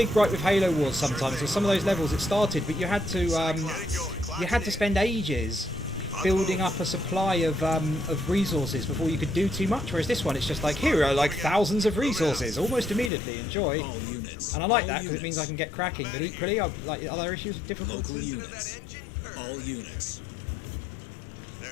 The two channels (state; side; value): drops out; right; at 13.1 s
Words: gripe with Halo Wars sometimes. With some of those levels it started, but you had to spend ages building up a supply of resources before you could do too much. Whereas this one, it's just like, here are like thousands of resources, almost immediately. Enjoy. All units. And I like that because it means I can get cracking. But equally, I've like other issues with difficulty. Local units. All units. They're